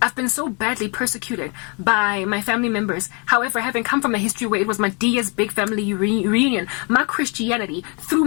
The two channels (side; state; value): right; quieter; 33.5 dB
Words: I've been so badly persecuted by my family members. However, having come from a history where it was my Dia's big family reunion, my Christianity threw